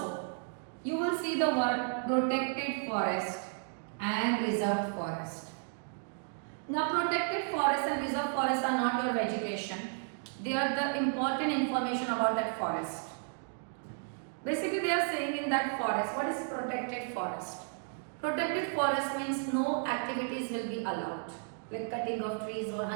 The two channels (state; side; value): silent; left; 56 dB below the other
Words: you will see the word protected forest and reserved forest. Now, protected forest and reserved forest are not your vegetation. They are the important information about that forest. Basically, they are saying in that forest, what is protected forest? Protected forest means no activities will be allowed. Like cutting of trees or